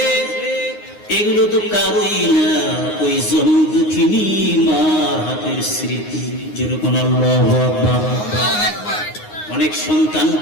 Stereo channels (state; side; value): late; right; 9.6 ms